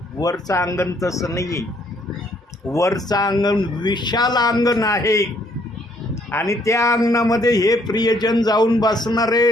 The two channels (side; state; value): both; normal; correlation 0.66